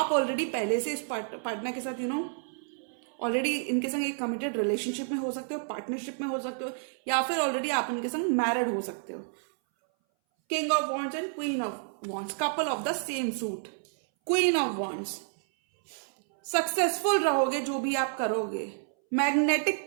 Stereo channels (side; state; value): left; silent; 58 dB below the other